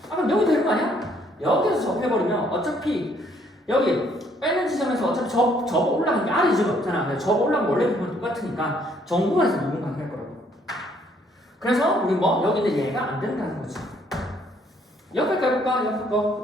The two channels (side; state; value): both; normal; correlation 0.66